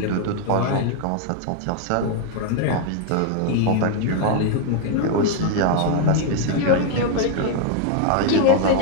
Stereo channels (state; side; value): different; both; correlation 0.00